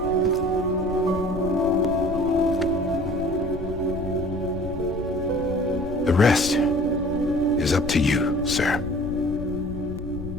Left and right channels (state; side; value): noise; left; rumble, 10 dB below the sound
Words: The rest is up to you, sir.